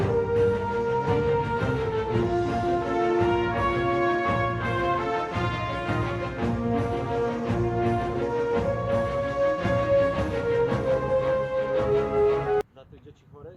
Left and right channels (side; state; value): both; identical; correlation 1.00